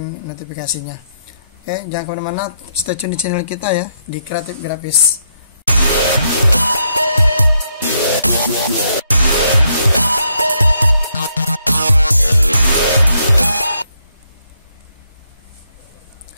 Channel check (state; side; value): inverted; both; correlation -0.76